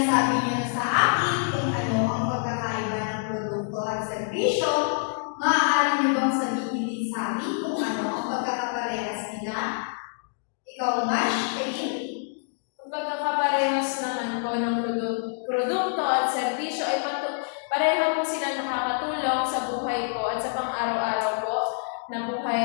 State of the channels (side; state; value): right; silent; digital silence